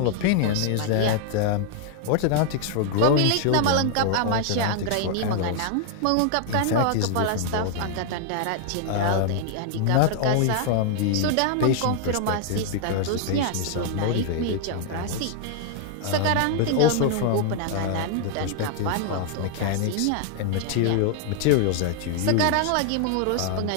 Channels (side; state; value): both; different; correlation 0.00